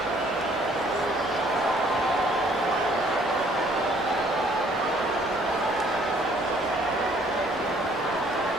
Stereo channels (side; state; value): both; normal; correlation 0.61